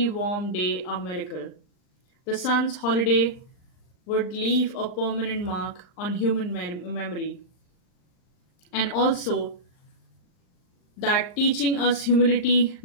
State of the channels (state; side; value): late; right; 39 ms